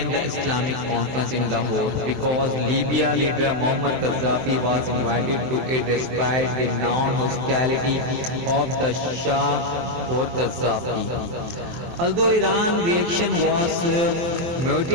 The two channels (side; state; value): left; late; 23 ms